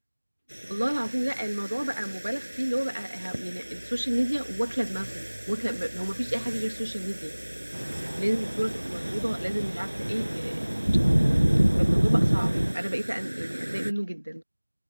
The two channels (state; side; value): inverted; both; correlation -1.00